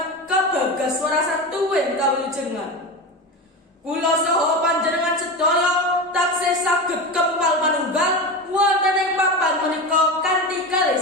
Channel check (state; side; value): normal; both; correlation 0.23